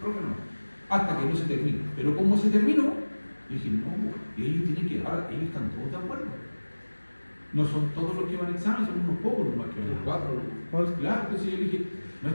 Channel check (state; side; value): inverted; both; correlation -1.00